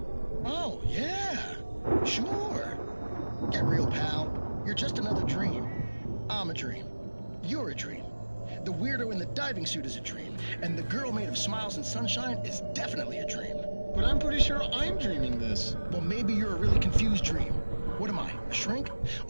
Oh, yeah. Sure. Get real, pal. You're just another dream. I'm a dream. You're a dream. The weirdo in the diving suit is a dream. And the girl made of smiles and sunshine is definitely a dream. But I'm pretty sure I'm dreaming this. Well, maybe you're a really confused dream. What am I, A shrink?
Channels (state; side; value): inverted; both; correlation -1.00